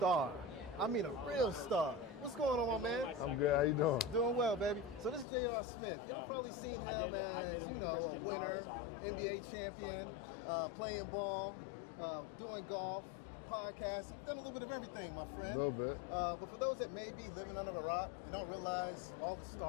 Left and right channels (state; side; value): drops out; right; at 5.2 s